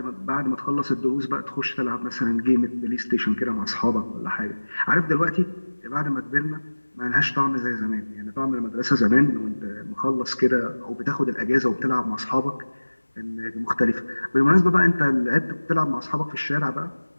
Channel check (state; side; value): inverted; both; correlation -1.00